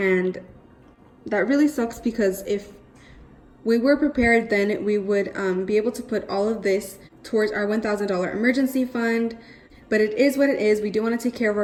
that really sucks, because if we were prepared, then we would be able to put all of this towards our $1,000 emergency fund. But it is what it is. We do want to take care of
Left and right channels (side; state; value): both; identical; correlation 1.00